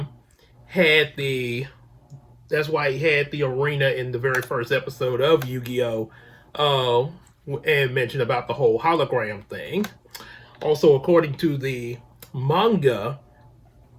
had the arena in the very first episode of Yu-Gi-Oh, and mentioned about the whole hologram thing. Also, according to the manga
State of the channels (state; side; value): identical; both; correlation 1.00